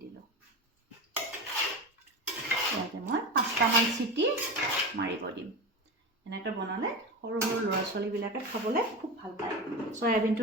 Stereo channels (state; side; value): normal; both; correlation 0.24